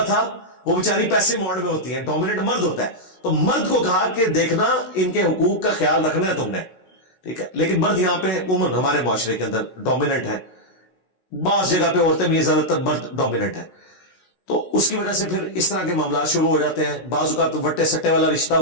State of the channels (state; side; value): late; right; 16 ms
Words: था वो बेचारी पैसे मोड में होती है, डोमिनेंट मर्द होता है, तो मर्द को कहा कि देखना इनके हुकूक का ख्याल रखना है तुमने, ठीक है। लेकिन मर्द यहां पे उमूमन हमारे मुआशरे के अंदर डोमिनेंट है, बास जगह पे औरतें भी, ज्यादातर मर्द डोमिनेंट है, तो उसकी वजह से फिर इस तरह के मामला शुरू हो जाते हैं। बाजू का तो वट्टे सट्टे वाला रिश्ता